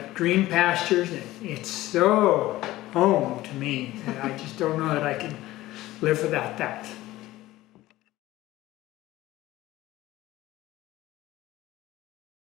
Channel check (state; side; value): quieter; right; 16.7 dB